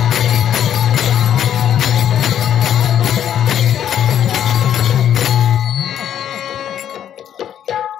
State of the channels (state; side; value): quieter; right; 10.0 dB